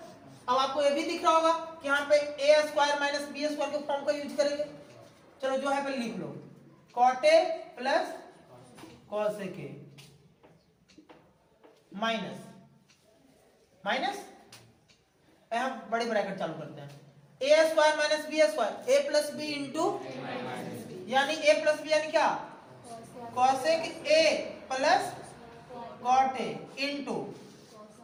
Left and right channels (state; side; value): identical; both; correlation 1.00